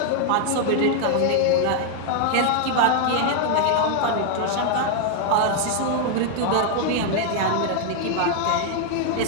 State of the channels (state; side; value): different; both; correlation 0.00